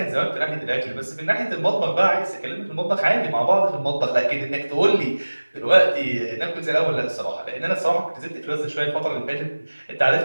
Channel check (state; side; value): inverted; both; correlation -1.00